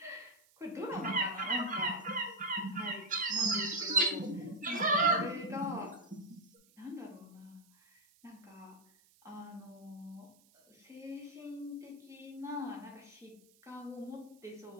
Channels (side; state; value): right; noise; hiss, 30 dB below the sound